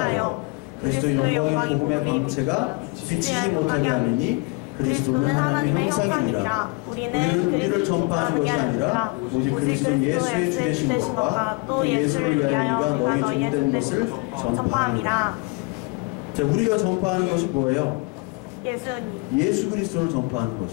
그리스도 영광의 복음의 광채가 비치지 못하게 하느니 그리스도는 하나님의 형상이니라. 우리는 우리를 전파하는 것이 아니라 오직 그리스도 예수의 주되신 것과 또 예수를 위하여 우리가 너희 종된 것을 전파합니다. 자, 우리가 전파하는 것이 뭐예요? 예수 그리스도를 전파하는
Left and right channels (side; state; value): right; quieter; 28.7 dB